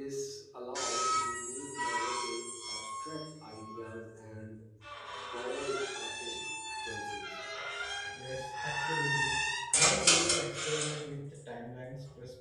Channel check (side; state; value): both; identical; correlation 1.00